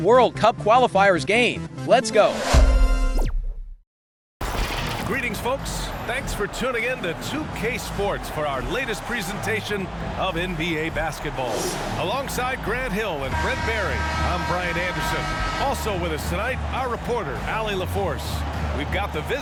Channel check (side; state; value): both; identical; correlation 1.00